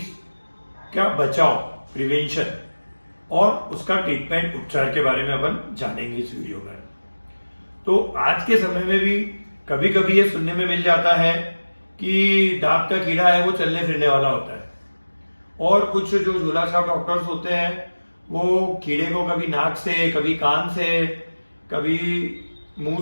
का बचाव प्रिवेंशन और उसका ट्रीटमेंट उपचार के बारे में अपन जानेंगे इस वीडियो में। तो आज के समय में भी कभी कभी ये सुनने में मिल जाता है कि दांत का कीड़ा है वो चलने फिरने वाला होता है, और कुछ जो झोला छाप डॉक्टर्स होते हैं वो कीड़े को कभी नाक से, कभी कान से, कभी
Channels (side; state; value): both; inverted; correlation -1.00